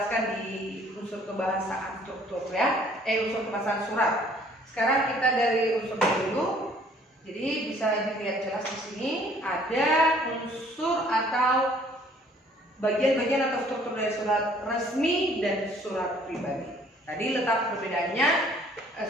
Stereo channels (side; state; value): both; normal; correlation 0.58